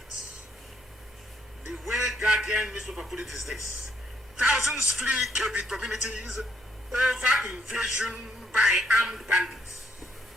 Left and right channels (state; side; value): normal; both; correlation 0.72